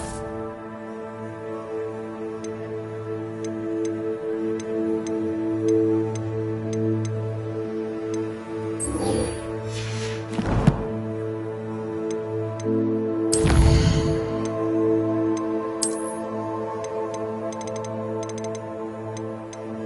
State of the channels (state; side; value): identical; both; correlation 1.00